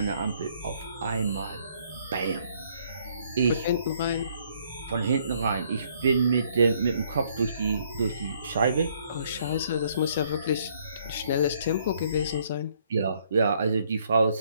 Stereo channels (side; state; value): both; inverted; correlation -0.67